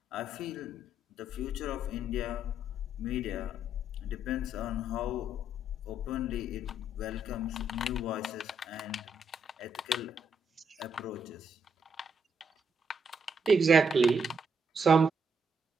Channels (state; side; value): normal; both; correlation 0.75